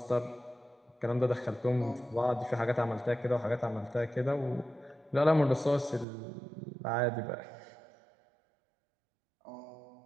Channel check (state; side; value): drops out; left; at 6.1 s